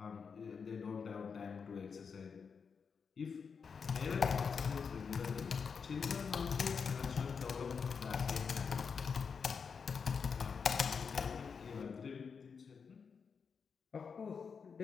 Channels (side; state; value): right; quieter; 5.9 dB